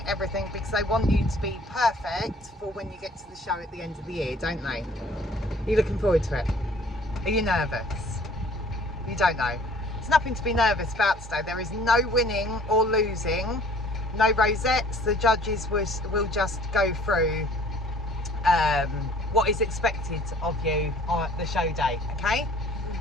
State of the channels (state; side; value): normal; both; correlation 0.53